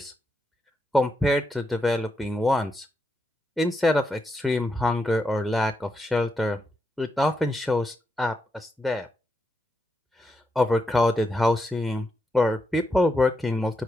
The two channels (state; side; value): normal; both; correlation 0.84